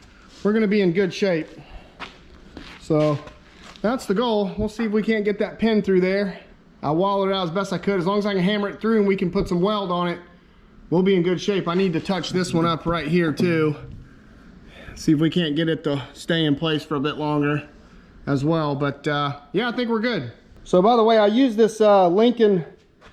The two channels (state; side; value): identical; both; correlation 1.00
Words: we're gonna be in good shape. So that's the goal. We'll see if we can't get that pin through there. I wallowed it out as best I could. As long as I can hammer it through and we can put some weld on it, we'll be in good shape. I need to touch this one up right here too. See if we can't get it to stay in place for a bit longer as well. But yeah, I think we're good. So by the way, I use this Lincoln.